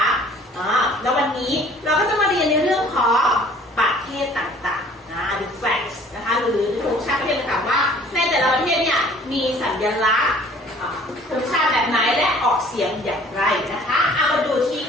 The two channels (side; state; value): both; normal; correlation 0.53